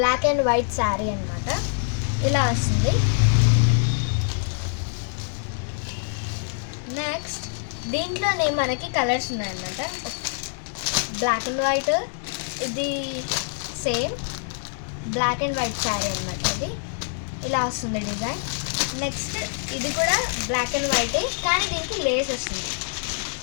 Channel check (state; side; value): silent; right; 61 dB below the other